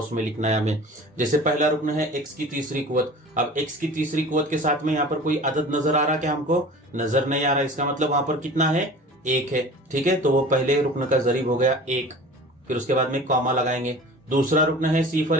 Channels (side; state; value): both; normal; correlation 0.40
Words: में लिखना है हमें। जैसे पहला रुकन है x की तीसरी कुव्वत। अब x की तीसरी कुव्वत के साथ में यहाँ पर कोई अदद नजर आ रहा क्या? हमको नजर नहीं आ रहा। इसका मतलब वहां पर कितना है? 1 है, ठीक है। तो वो पहले रुकन का जरीब हो गया 1। फिर उसके बाद में कॉमा लगाएंगे। दूसरा रुकन है